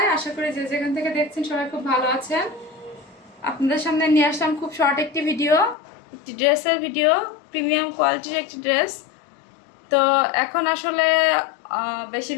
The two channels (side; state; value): right; drops out; at 5.8 s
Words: আশা করি যে যেখান থেকে দেখছেন সবাই খুব ভালো আছেন। আপনাদের সামনে নিয়ে আসলাম খুব শর্ট একটি ভিডিও, একটি ড্রেসের ভিডিও, প্রিমিয়াম কোয়ালিটির একটি ড্রেস। তো এখন আসলে